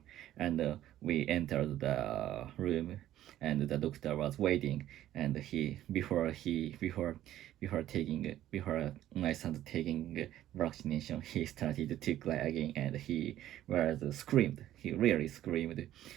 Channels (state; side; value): quieter; left; 13.0 dB